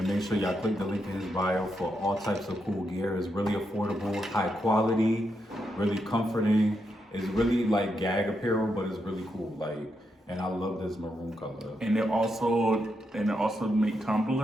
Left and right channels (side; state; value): both; normal; correlation 0.83